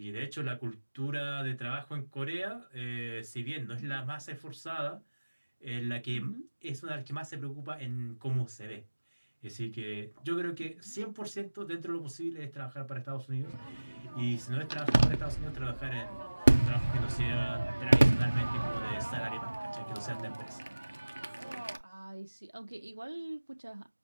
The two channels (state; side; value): inverted; both; correlation -1.00